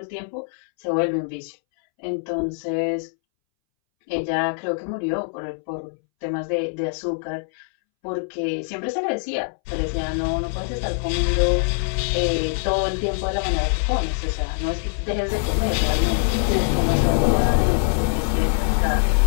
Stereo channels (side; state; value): right; silent; 63 dB below the other